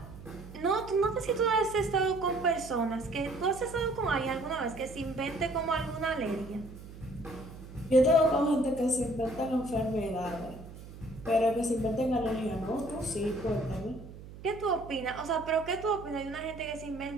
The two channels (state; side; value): noise; right; hum, 15 dB below the sound